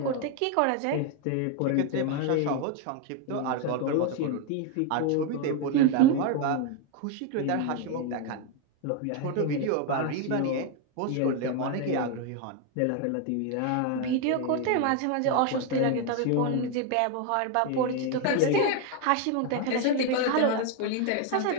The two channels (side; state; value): both; different; correlation 0.01